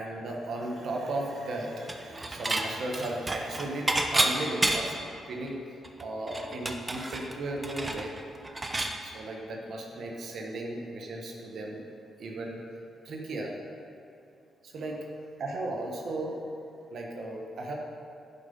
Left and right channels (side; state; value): both; normal; correlation 0.86